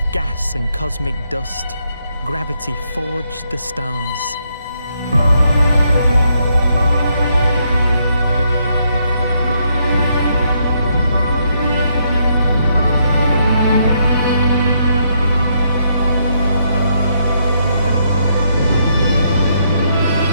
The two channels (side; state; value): both; inverted; correlation -0.75